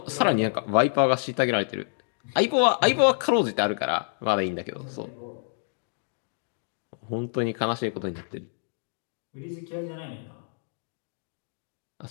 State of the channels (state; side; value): silent; right; digital silence